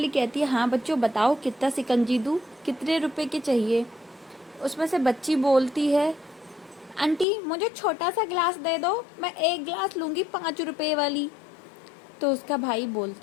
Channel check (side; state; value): right; drops out; at 7.2 s